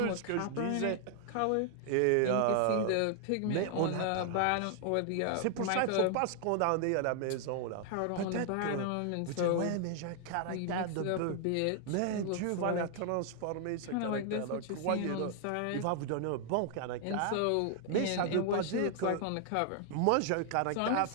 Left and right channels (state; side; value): different; both; correlation 0.00